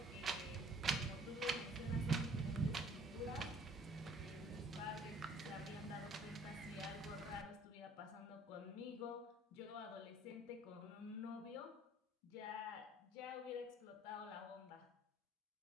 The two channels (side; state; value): both; normal; correlation 0.56